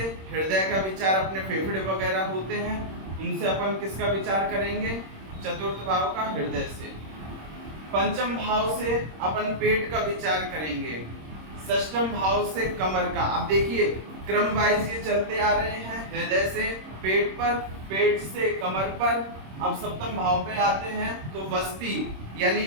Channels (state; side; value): late; left; 26 ms